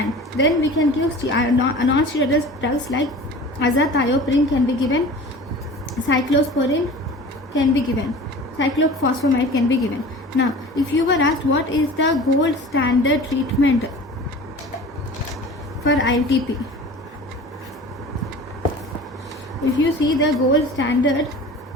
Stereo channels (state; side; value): normal; both; correlation 0.40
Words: then we can give non-steroidal drugs like azathioprine can be given, cyclosporin can be given, cyclophosphamide can be given. Now, if you were asked what is the gold standard treatment for ITP, if you see the gold standard